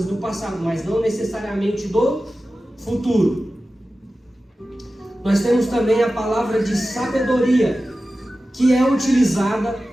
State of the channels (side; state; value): both; normal; correlation 0.95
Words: do passado, mas não necessariamente do futuro. Nós temos também a palavra de sabedoria, que é utilizada